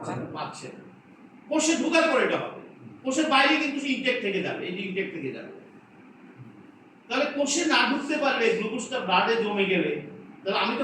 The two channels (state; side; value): identical; both; correlation 1.00